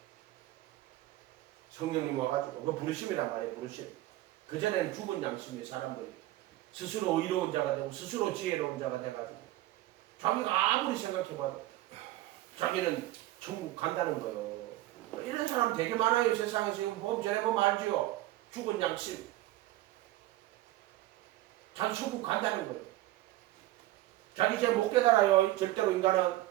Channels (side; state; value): left; quieter; 16.2 dB